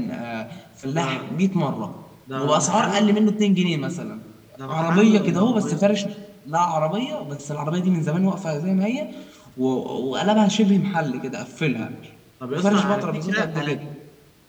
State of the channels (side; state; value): both; identical; correlation 1.00